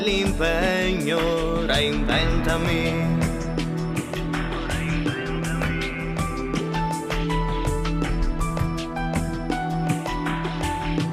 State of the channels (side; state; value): both; identical; correlation 1.00